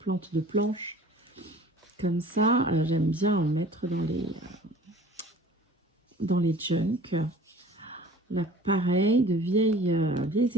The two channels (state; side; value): normal; both; correlation 0.46